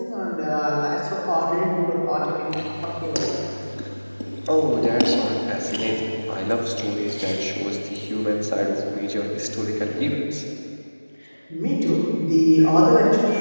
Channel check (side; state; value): both; inverted; correlation -1.00